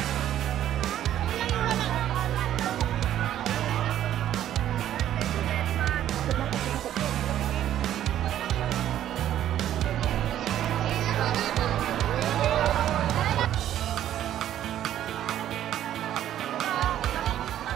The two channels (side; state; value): left; quieter; 11.6 dB